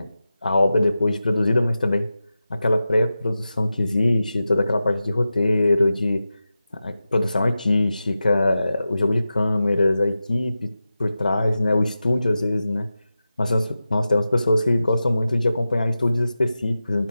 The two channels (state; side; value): inverted; both; correlation -0.93